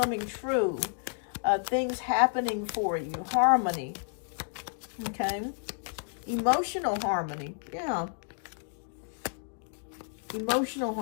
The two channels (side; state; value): right; silent; 57 dB below the other